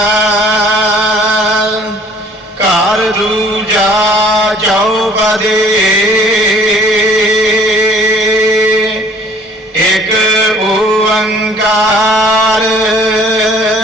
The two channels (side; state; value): both; normal; correlation 0.55